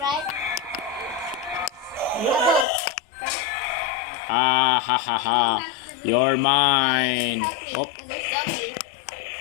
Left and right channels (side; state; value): right; drops out; at 2.7 s